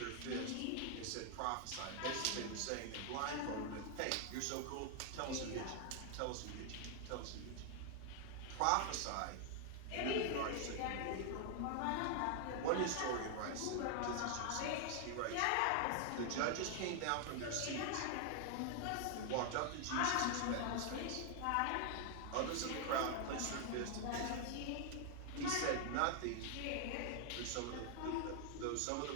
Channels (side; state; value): both; different; correlation 0.00